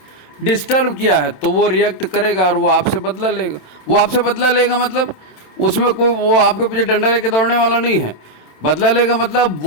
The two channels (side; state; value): right; late; 27 ms